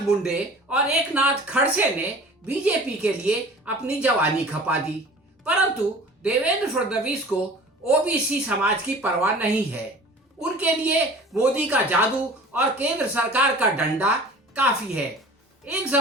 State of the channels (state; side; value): normal; both; correlation 0.43